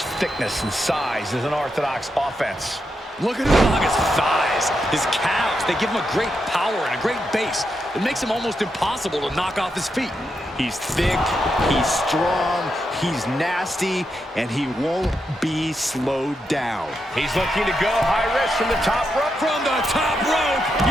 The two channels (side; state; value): both; normal; correlation 0.84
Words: thickness and size is an orthodox offense. Look at Umaga's thighs, his calves. They give him a great power and a great base. It makes him almost impossible to knock off his feet. He's thick, he's strong, he's nasty, and he won't be slowed down. He's looking to go high risk from the top rope. From the top rope!